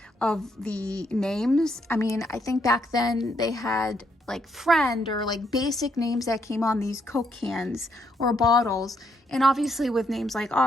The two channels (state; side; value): normal; both; correlation 0.74